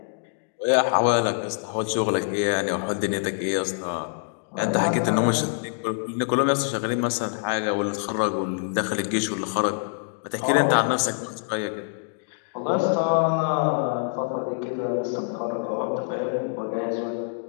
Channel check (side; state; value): right; silent; digital silence